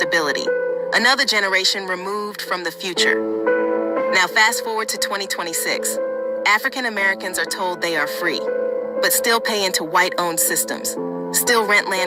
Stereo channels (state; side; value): identical; both; correlation 1.00